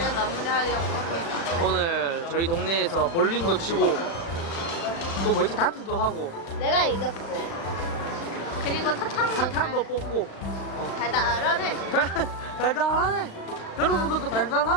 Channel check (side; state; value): right; late; 36 ms